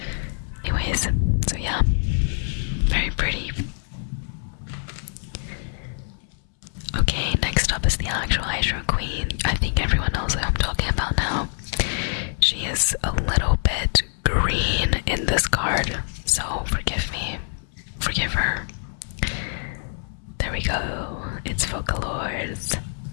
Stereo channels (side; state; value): right; silent; 62 dB below the other